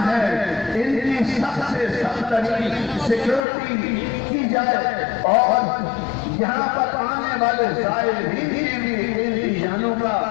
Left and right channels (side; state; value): right; drops out; at 3.4 s